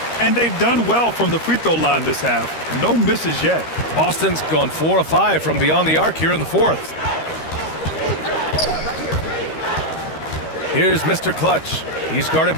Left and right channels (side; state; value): right; late; 13 ms